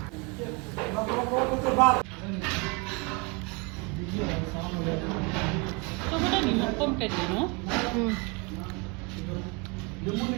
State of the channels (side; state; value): left; quieter; 29.6 dB